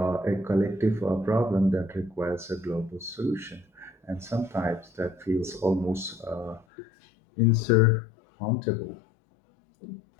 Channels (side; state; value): right; drops out; at 6.7 s